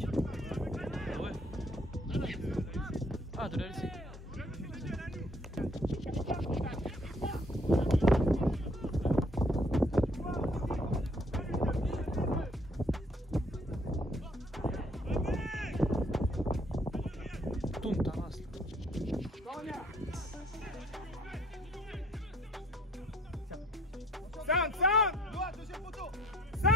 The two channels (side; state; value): both; normal; correlation 0.62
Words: Ah ouais. Ah, de la laisser. Tourne ta race. Noah, deuxième poteau.